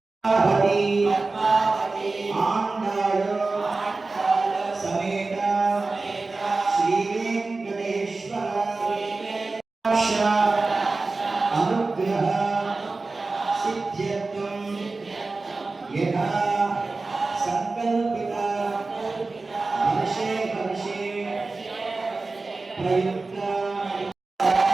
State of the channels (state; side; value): quieter; left; 3.6 dB